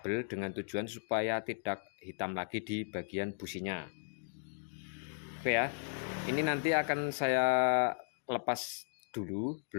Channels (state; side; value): silent; right; digital silence